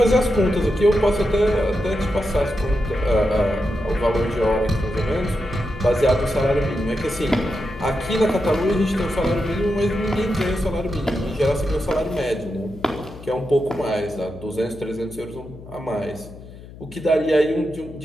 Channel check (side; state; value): left; noise; hum, 17 dB below the sound